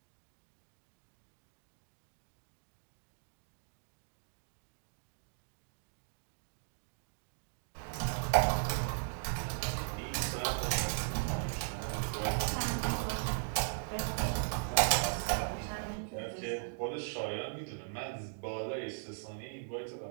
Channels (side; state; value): left; silent; digital silence